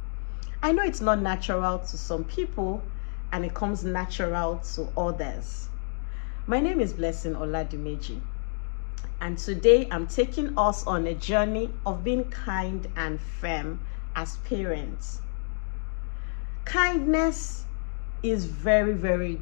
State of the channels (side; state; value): right; silent; 58 dB below the other